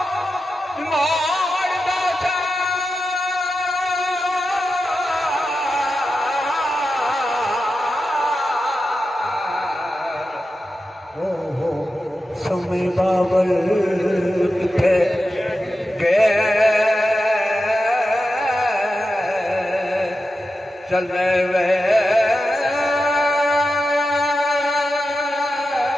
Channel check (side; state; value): both; normal; correlation 0.90